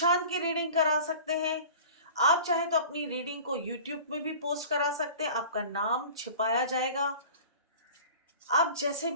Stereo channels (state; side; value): inverted; both; correlation -0.42